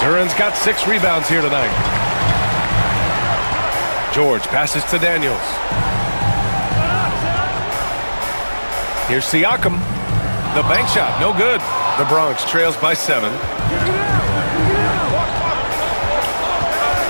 Duren's got 6 rebounds here tonight. George passes to Daniels. Here's Siakam. The bank shot, no good. The Bronx trails by 7.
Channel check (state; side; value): inverted; both; correlation -1.00